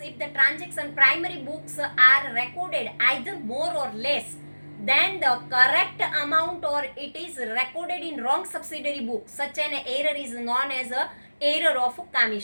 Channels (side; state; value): both; inverted; correlation -1.00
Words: if the transaction primary books are recorded either more or less than the correct amount or it is recorded in wrong subsidiary book, such an error is known as a error of